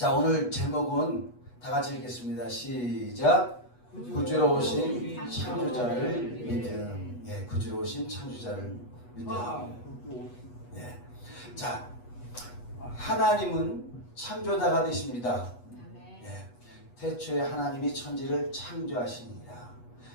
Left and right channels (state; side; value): late; right; 8.2 ms